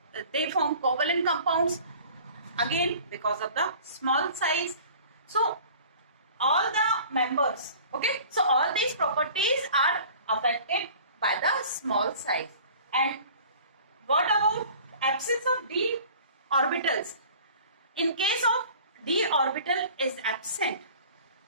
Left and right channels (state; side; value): inverted; both; correlation -0.46